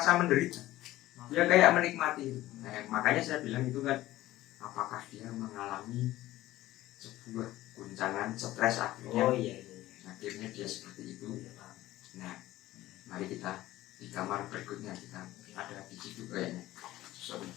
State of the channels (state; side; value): quieter; right; 15.9 dB